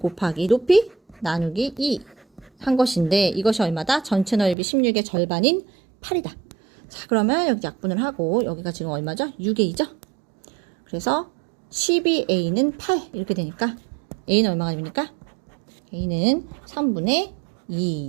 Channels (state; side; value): drops out; left; at 4.5 s